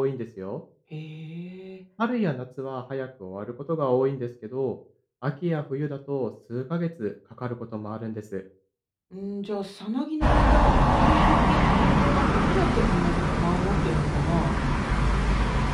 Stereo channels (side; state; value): both; identical; correlation 1.00